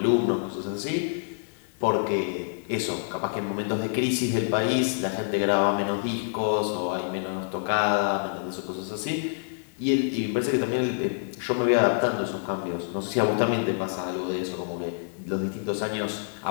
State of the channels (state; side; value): silent; right; 60 dB below the other